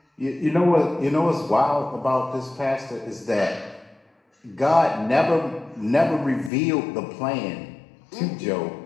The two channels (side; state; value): right; drops out; at 6.5 s